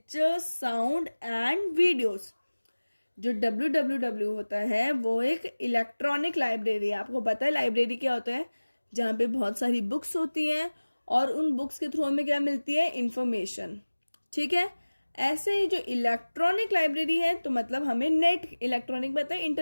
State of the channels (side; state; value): both; inverted; correlation -1.00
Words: sound and videos। जो WWW होता है वो एक इलेक्ट्रॉनिक लाइब्रेरी है। आपको पता है लाइब्रेरी क्या होता है? जहाँ पे बहुत सारी बुक्स होती हैं और उन बुक्स के थ्रू हमें क्या मिलती है? इंफॉर्मेशन। ठीक है, ऐसे ही जो इलेक्ट्रॉनिक लाइब्रेरी है तो मतलब हमें नेट, इलेक्ट्रॉनिक बताए